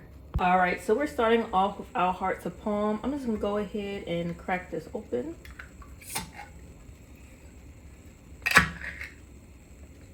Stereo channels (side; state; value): both; identical; correlation 1.00